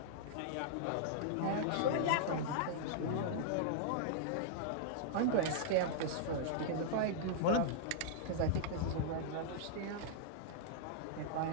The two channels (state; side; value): different; both; correlation -0.01